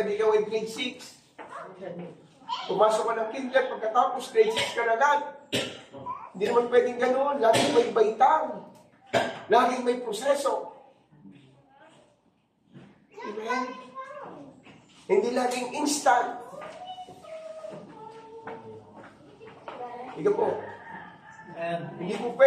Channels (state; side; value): identical; both; correlation 1.00